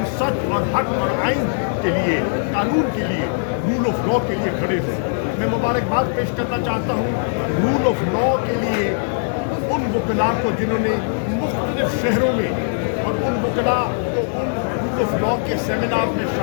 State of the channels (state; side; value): silent; right; digital silence